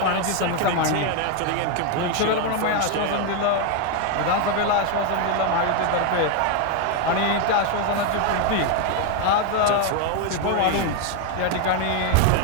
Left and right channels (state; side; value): different; both; correlation 0.01